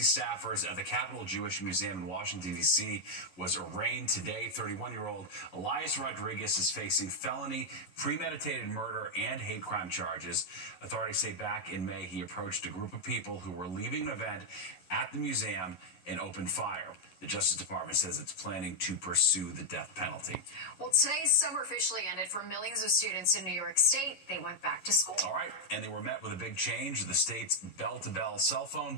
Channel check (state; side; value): late; right; 11 ms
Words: staffers at the Capitol Jewish Museum in Washington, D.C. was arraigned today. 31-year-old Elias Rodriguez is facing felony, premeditated murder, and hate crime charges. Authorities say back in May he approached a group of people who were leaving an event at the museum and opened fire. The Justice Department says it's planning to pursue the death penalty. Well, today's summer officially ended for millions of students in New York State. They went back to school. All right, and they were met with a big change. The state's bell-to-bell cell phone